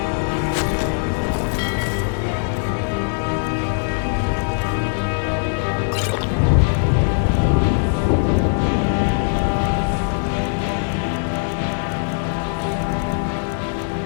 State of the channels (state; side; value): silent; right; digital silence